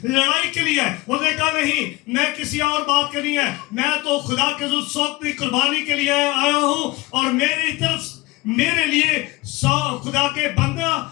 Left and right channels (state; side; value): quieter; right; 21.6 dB